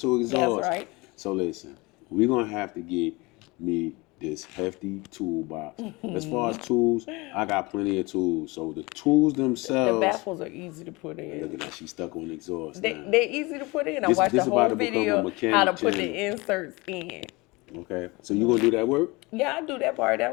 exhaust. That's right. So listen, we're gonna have to get me this hefty toolbox. As far as tools, I got plenty of tools. So the tools themselves. The baffles are easy to put in. Look at that, she's stuck on exhaust. They're easy to put in. I This- watched this the about whole to become a video mechanic how to put channel. the inserts in. Okay, so you gonna do that work? Yeah, I do that part.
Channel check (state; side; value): quieter; right; 24.4 dB